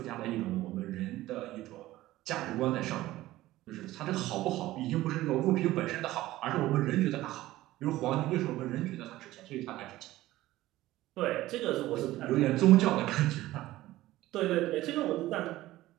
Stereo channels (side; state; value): left; quieter; 16.3 dB